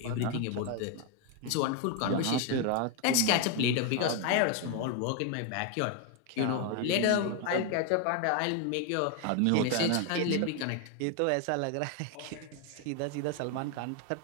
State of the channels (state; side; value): different; both; correlation 0.01